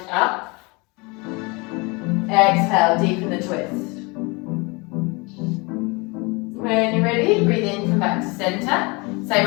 up. Exhale, deepen the twist. When you're ready, breathe in, come back to center. Same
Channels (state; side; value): quieter; right; 27.5 dB